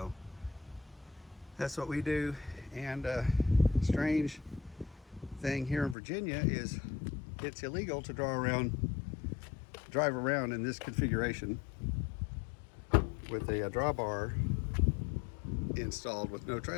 that's what we do. And strange thing here in Virginia is it's illegal to drive around in this configuration with a drawbar installed with no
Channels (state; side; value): drops out; right; at 6.0 s